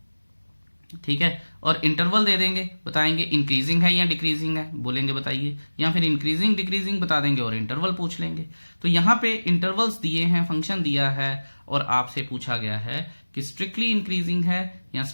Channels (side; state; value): both; inverted; correlation -1.00